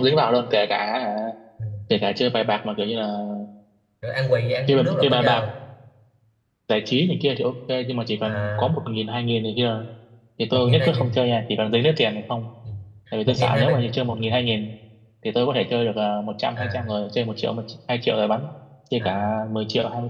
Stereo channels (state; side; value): identical; both; correlation 1.00